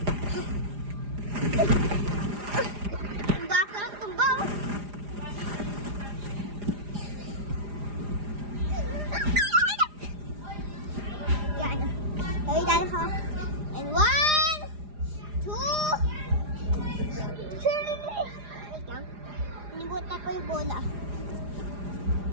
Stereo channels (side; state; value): left; late; 4.9 ms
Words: And 1, 2, Nibot na po yung bola.